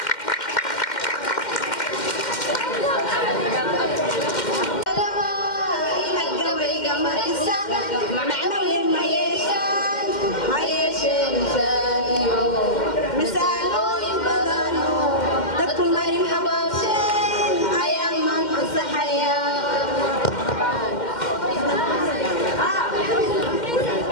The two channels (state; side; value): late; right; 2.1 ms